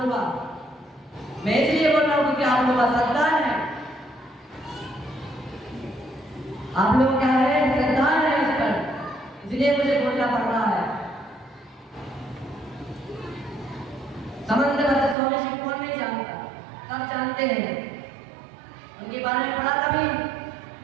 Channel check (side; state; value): left; drops out; at 15.2 s